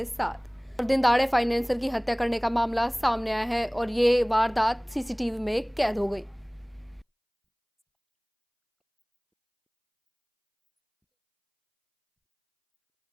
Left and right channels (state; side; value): identical; both; correlation 1.00